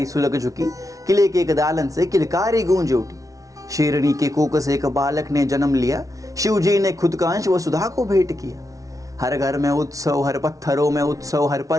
सुलग झुकी, किले के एक दालन से किलकारी गूंज उठी। शेरनी के कोक से एक बालक ने जन्म लिया, शिव जी ने खुद का अंश वसुधा को भेंट किया। हर घर में उत्सव, हर पत्थरों में उत्सव, हर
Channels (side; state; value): left; late; 0.17 ms